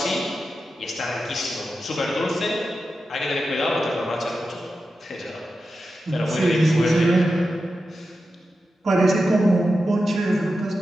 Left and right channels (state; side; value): normal; both; correlation 0.90